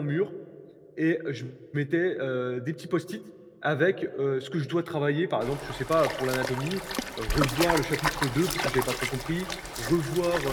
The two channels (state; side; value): identical; both; correlation 1.00